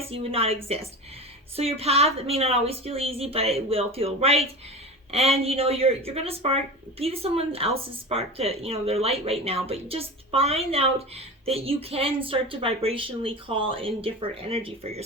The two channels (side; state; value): both; normal; correlation 0.30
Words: you would not exist. So your path may not always feel easy, but it will feel right. And, you know, you're going to be someone else's spark to, you know, their light right now. But just find out that you can start to vibrationally call in different energy for